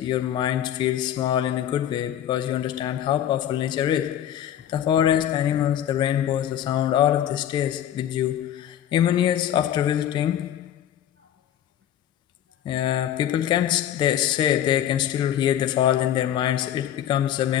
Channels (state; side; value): quieter; right; 10.8 dB